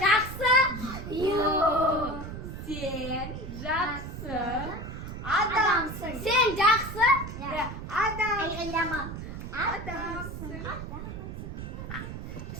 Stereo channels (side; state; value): right; noise; rumble, 8 dB below the sound